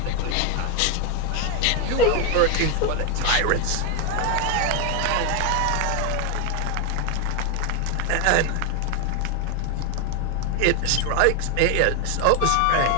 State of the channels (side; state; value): both; different; correlation 0.01